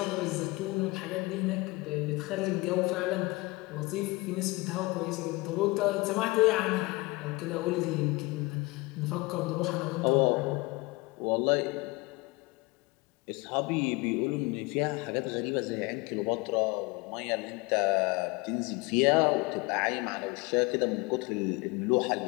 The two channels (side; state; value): right; quieter; 23.9 dB